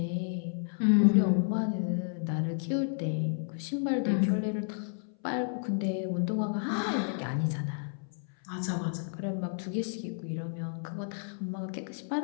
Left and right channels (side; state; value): right; silent; 57 dB below the other